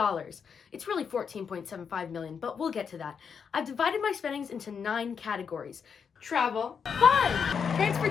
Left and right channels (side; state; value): right; quieter; 6.6 dB